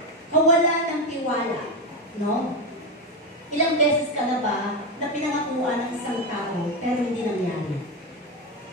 kawalan ng tiwala, no? Ilang beses ka na ba na pinangakuan ng isang tao pero hindi nangyari?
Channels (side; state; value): both; normal; correlation 0.12